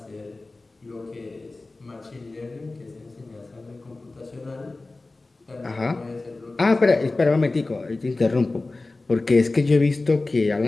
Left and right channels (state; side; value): quieter; right; 3.2 dB